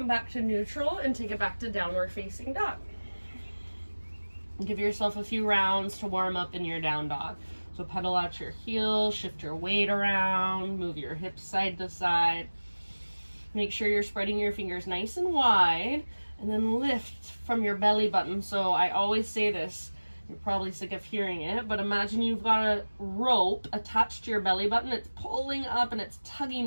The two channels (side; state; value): both; inverted; correlation -1.00